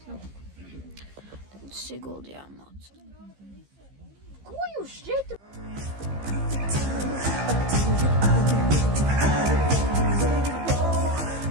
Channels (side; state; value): left; late; 15 ms